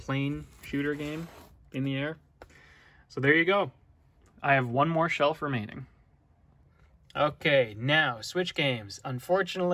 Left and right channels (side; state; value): both; identical; correlation 1.00